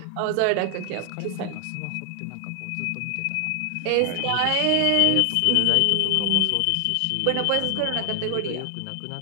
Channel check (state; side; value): different; both; correlation 0.00